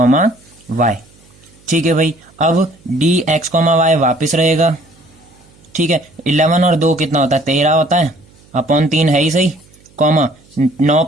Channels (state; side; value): noise; right; hum, 29 dB below the sound